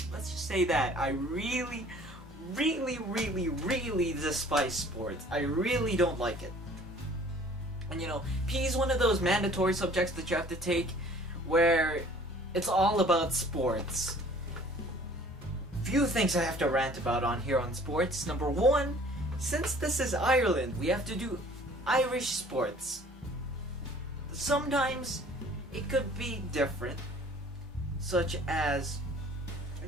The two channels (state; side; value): normal; both; correlation 0.52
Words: Let's just say that. I really despise sports. I really don't like it. And you know, PE is one of those mandatory subjects that you have to take where it's all about sports. Few things I have to rant about on here on sports. Number one, since this is Ireland, we have to do Irish sports. Sometimes it could be different, such as, I